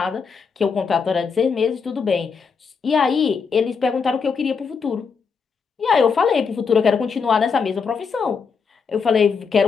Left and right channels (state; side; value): quieter; right; 5.7 dB